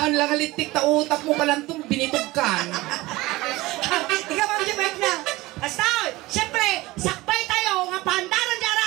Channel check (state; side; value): quieter; left; 19.9 dB